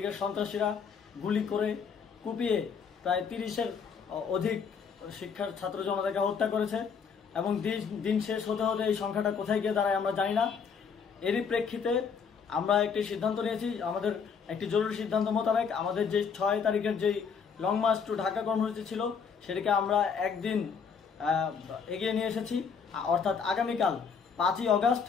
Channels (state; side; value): quieter; right; 6.2 dB